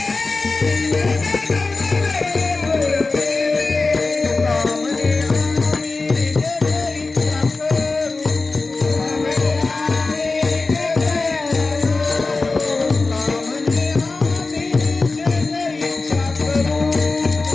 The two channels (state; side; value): quieter; right; 3.7 dB